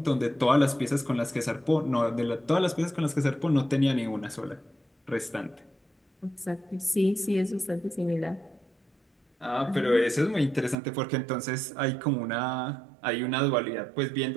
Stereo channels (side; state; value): left; drops out; at 10.8 s